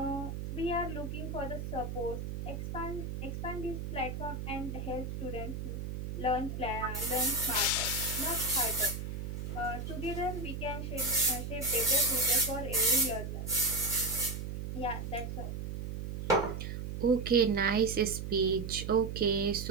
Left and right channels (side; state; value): right; noise; hum, 5 dB below the sound